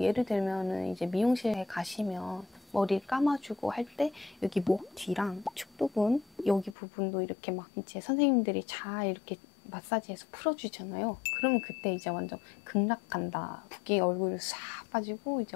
예를 들면은 이제 미용실에 가시면 머리를 감아주고 할 때 여기 목 뒤랑 축두근 여기 부분도 이렇게 막 이제 선생님들이 잘 이렇게 마사지해서 풀어주잖아요. 그러면 그때 이제 완전 극락간다. 붓기 얼굴 싹 빠지고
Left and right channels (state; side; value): drops out; right; at 6.8 s